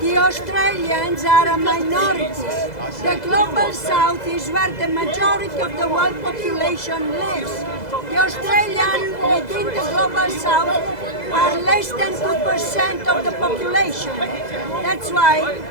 Australians are a minority. The global south is where the majority of the world population lives. The Australians within the global south are less than 2% of the population. That's why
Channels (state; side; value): late; right; 2.0 ms